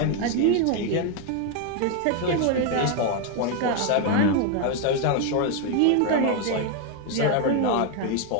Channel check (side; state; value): both; different; correlation 0.01